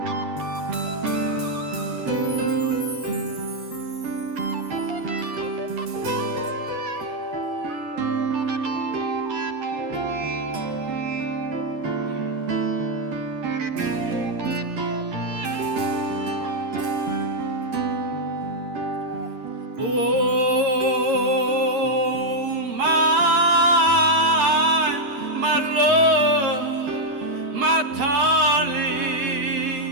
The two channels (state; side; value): late; left; 13 ms